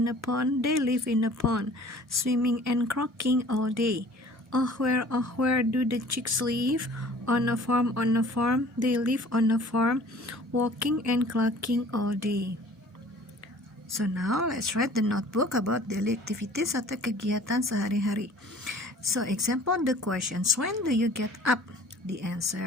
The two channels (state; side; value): normal; both; correlation 0.49